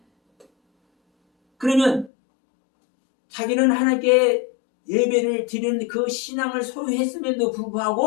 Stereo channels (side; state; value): right; drops out; at 2.1 s